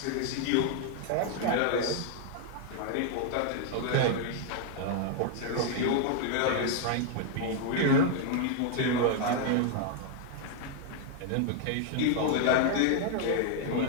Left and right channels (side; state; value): both; different; correlation 0.00